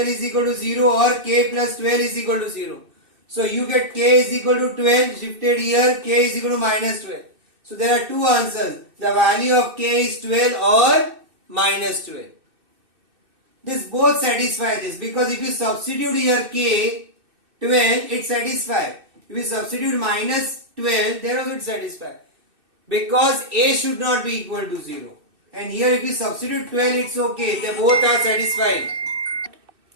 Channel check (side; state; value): left; late; 2.6 ms